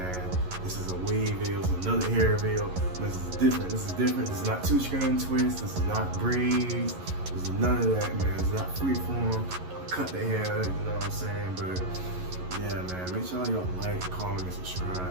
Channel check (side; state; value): left; late; 11 ms